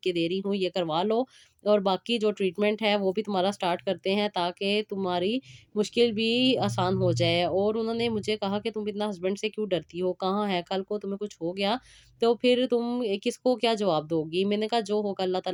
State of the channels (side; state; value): both; identical; correlation 1.00